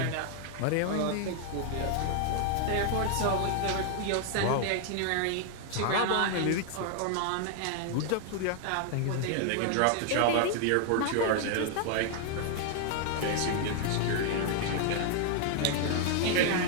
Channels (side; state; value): both; different; correlation 0.00